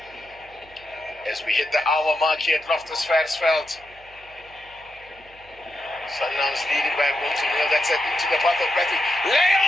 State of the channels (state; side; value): noise; right; hum, 26 dB below the sound